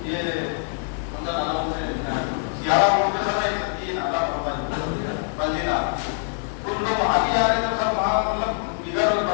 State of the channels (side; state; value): right; silent; 63 dB below the other